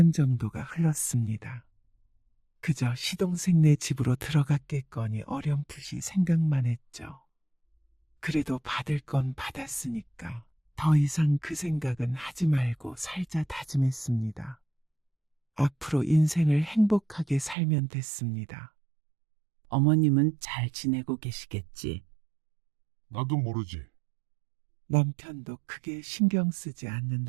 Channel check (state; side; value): drops out; left; at 17.6 s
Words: 정도가 흘렀습니다. 그저 시동생네 집으로 들어갔겠거니 어렴풋이 생각만 했죠. 그래도 받을 건 받았으니까 더 이상 그 생각은 하지 말고 살자 다짐했습니다. 앞으로 인생을 행복하게 살면 됐습니다. 어머님은 잘 지내고 계시겠지. 나도 모르지. 남편도 크게 신경 쓰지 않는